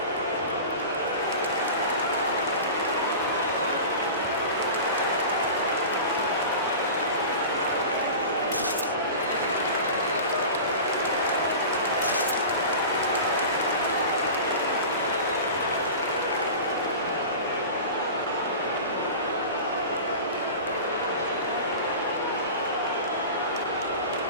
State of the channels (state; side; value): inverted; both; correlation -0.33